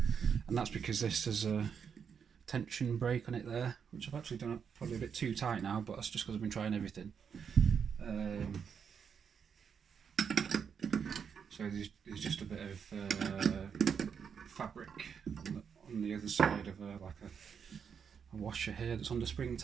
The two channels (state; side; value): quieter; left; 6.9 dB